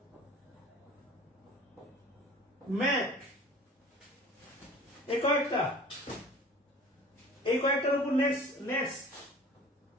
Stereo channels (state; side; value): normal; both; correlation 0.45